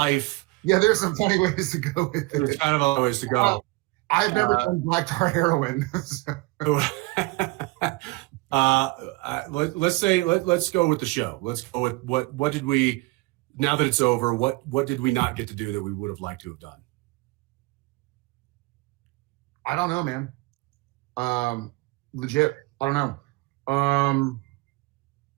Yeah, there's some funny ways to go with it. There's kind of other ways to go. I've never done black tar heroin. Let's go with the show. Let's go with what did we, now that it's over, what did we not get to do that we would have liked to have done? I don't know, man. Legit. I don't know.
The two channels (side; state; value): left; quieter; 24.0 dB